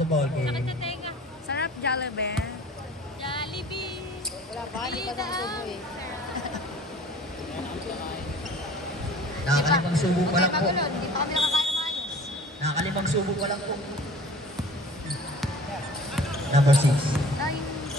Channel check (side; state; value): both; normal; correlation 0.46